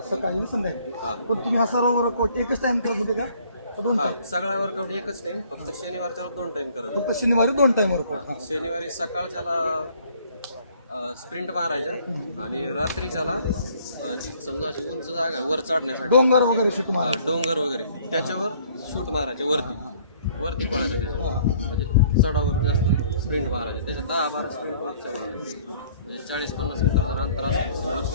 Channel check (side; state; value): both; inverted; correlation -0.59